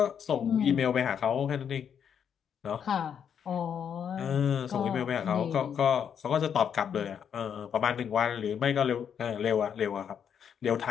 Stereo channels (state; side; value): quieter; right; 8.0 dB